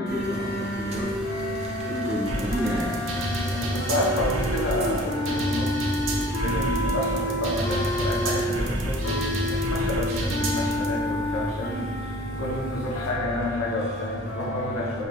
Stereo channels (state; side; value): normal; both; correlation 0.47